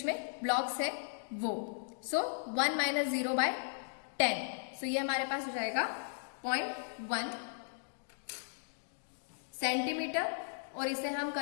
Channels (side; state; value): right; silent; digital silence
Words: में ब्लॉक्स है वो। सो 1 माइनस 0 बाय 10। सो ये हमारे पास हो जाएगा 0.1 सेंटीमीटर, और इसे हम